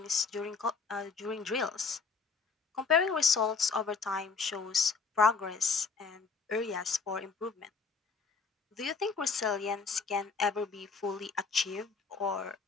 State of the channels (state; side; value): quieter; right; 5.0 dB